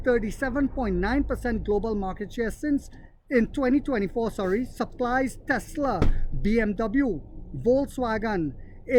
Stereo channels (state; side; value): identical; both; correlation 1.00